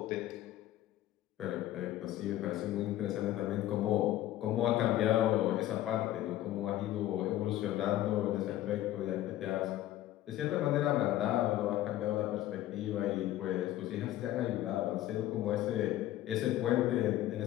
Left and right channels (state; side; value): quieter; right; 14.0 dB